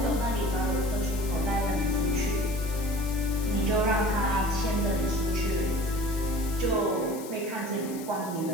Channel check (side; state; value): left; noise; hiss, 15 dB below the sound